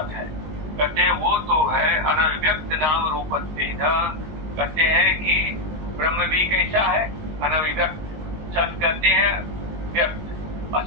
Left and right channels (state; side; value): late; left; 19 ms